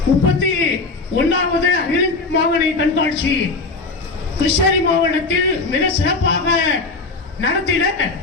31வது அகில மாவட்ட கண்காட்சி கிருஷ்ணகிரி மாவட்டத்தில் மிக சிறப்பாக நடத்திட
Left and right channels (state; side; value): quieter; right; 3.7 dB